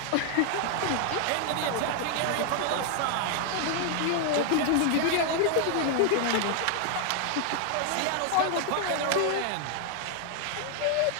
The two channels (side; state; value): both; different; correlation 0.00